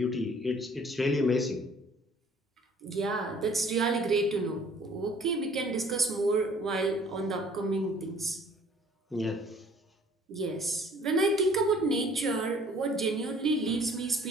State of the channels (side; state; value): both; normal; correlation 0.55